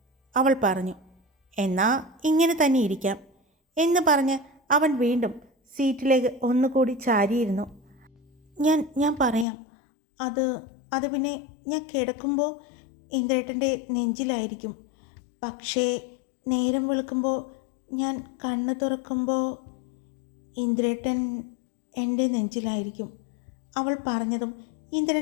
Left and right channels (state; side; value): drops out; right; at 9.5 s